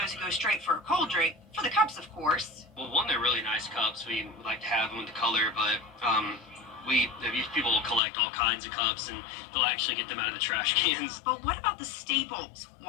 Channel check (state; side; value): drops out; right; at 8.0 s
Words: who go straight for a cold drink, for the cups, of course. Well, one, they're really nice cups. We like to have them with the color, but these people will collect all kinds of cups, and they'll actually get them out of the trash cans. But what about the staples?